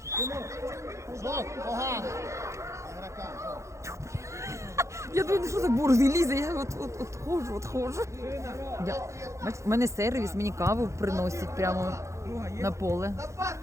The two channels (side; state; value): left; late; 0.14 ms